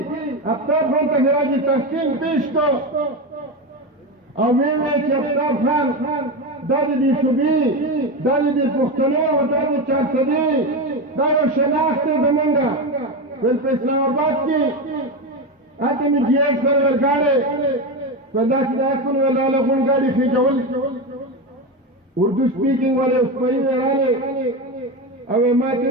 آفتاب خان ته خراج تحسین پیش کړ او ویې ویل چې آفتاب خان دا د دې صوبې دا د دې پښتنو دا د چارسدې دا یو شناخت دی زمونږ ویل په اسلام آباد کې هلته مې جي ایس سره ورګاډی ویل داسې داسې کړو ویل راله غونډګاډي خېجول اردو سپیکینګ والے اوسپري وې راغلې او یې ماته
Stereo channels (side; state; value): both; normal; correlation 0.17